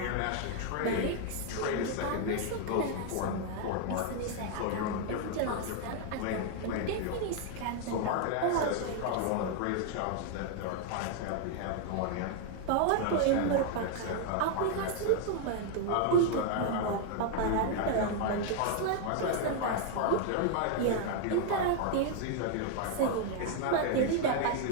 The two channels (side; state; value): both; different; correlation 0.00